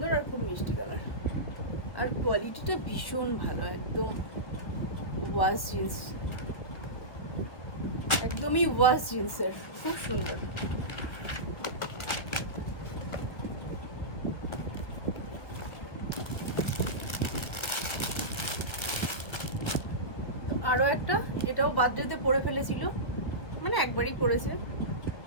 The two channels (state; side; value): late; right; 1.3 ms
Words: আর খুব মিষ্টি কালার। আর কোয়ালিটিটা ভীষণ ভালো, একদম ওয়াশ জিন্স, একদমই ওয়াশ জিন্সের, খুব সুন্দর। আরো একটা, এটাও বার্থডেতে পরে ফেলেছিল, মানে একবারই পরেছে,